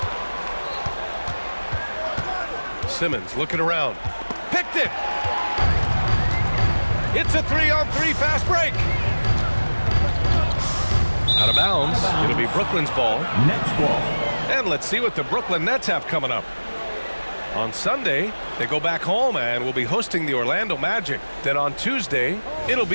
Simmons looking around. Picked it. It's a 3-on-3 fast break. Out of bounds. It'll be Brooklyn's ball. Nets ball. And let's see what the Brooklyn Nets have coming up. On Sunday, they go back home and will be hosting the Orlando Magic. Then on Tuesday, it'll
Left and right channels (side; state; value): both; inverted; correlation -1.00